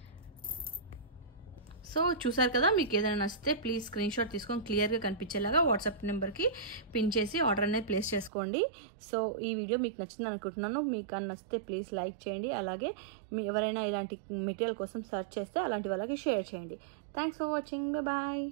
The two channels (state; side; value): drops out; left; at 8.3 s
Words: So చూసారు కదా, మీకు ఏదైనా నచ్చితే ప్లీజ్ స్క్రీన్ షాట్ తీసుకొని క్లియర్గా కనిపించేలాగా వాట్సాప్ నెంబర్కి పిన్ చేసి ఆర్డర్ అనేది ప్లేస్ చేసుకోండి. సో ఈ వీడియో మీకు నచ్చింది అనుకుంటున్నాను. మీకు నచ్చితే ప్లీజ్ లైక్ చేయండి. అలాగే మీ ఎవరైనా ఇలాంటి మెటీరియల్ కోసం సెర్చ్ చేస్తే అలాంటి వాళ్ళకి షేర్ చేయండి. Thanks for watching. బాయ్.